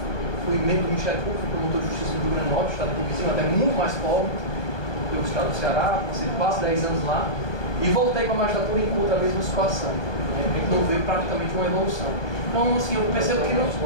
fui membro do Ministério Público, promotor de Justiça do Rio Grande do Norte, Estado aqui vizinho, até muito mais pobre do que o Estado do Ceará, passei quase 10 anos lá, e voltei para a magistratura e encontro a mesma situação. A gente não vê praticamente uma evolução. Então, assim, eu percebo que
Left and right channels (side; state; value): right; late; 1.2 ms